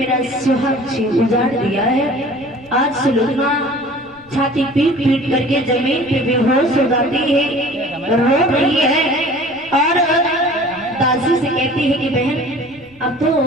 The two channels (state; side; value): noise; left; rumble, 28 dB below the sound